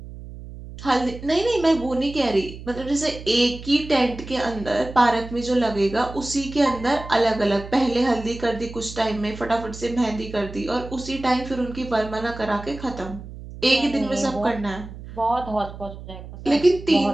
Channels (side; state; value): right; noise; hum, 13 dB below the sound